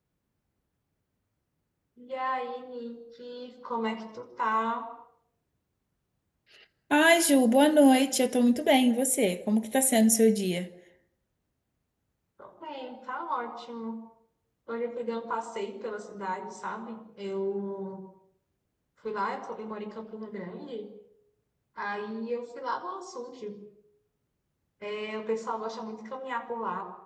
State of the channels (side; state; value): both; identical; correlation 1.00